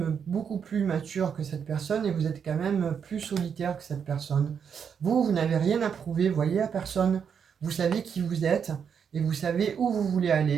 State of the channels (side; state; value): left; quieter; 7.2 dB